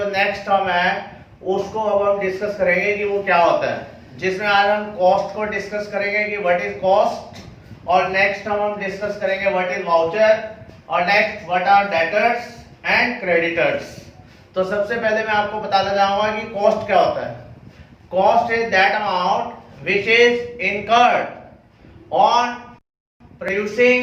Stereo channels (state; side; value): identical; both; correlation 1.00